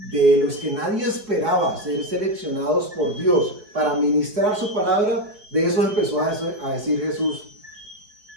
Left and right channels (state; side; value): late; left; 4.5 ms